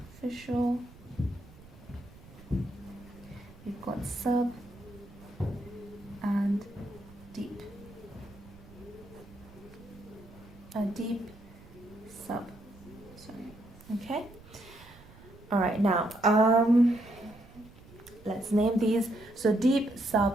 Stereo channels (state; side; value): noise; right; rumble, 21 dB below the sound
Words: We've got sub and deep. A deep sub. Sorry. Okay. All right. Now, let's name these. So deep,